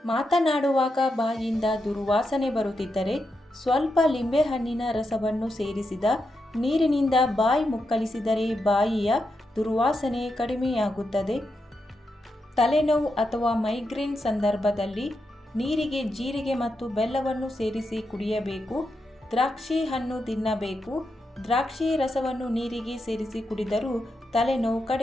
ಮಾತನಾಡುವಾಗ ಬಾಯಿಂದ ದುರ್ವಾಸನೆ ಬರುತ್ತಿದ್ದರೆ ಸ್ವಲ್ಪ ಲಿಂಬೆಹಣ್ಣಿನ ರಸವನ್ನು ಸೇರಿಸಿದ ನೀರಿನಿಂದ ಬಾಯಿ ಮುಕ್ಕಳಿಸಿದರೆ ಬಾಯಿಯ ದುರ್ವಾಸನೆ ಕಡಿಮೆಯಾಗುತ್ತದೆ. ತಲೆನೋವು ಅಥವಾ ಮೈಗ್ರೇನ್ ಸಂದರ್ಭದಲ್ಲಿ ನೀರಿಗೆ ಜೀರಿಗೆ ಮತ್ತು ಬೆಲ್ಲವನ್ನು ಸೇರಿಸಿ ಕುಡಿಯಬೇಕು. ದ್ರಾಕ್ಷಿ ಹಣ್ಣು ತಿನ್ನಬೇಕು. ದ್ರಾಕ್ಷಿ ರಸವನ್ನು ನೀರಿಗೆ ಸೇರಿಸಿ ಕುಡಿದರೂ ತಲೆನೋವು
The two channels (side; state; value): both; normal; correlation 0.85